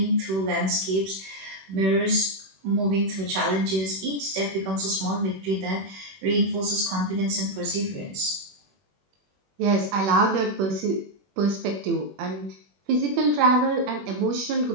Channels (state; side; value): late; left; 21 ms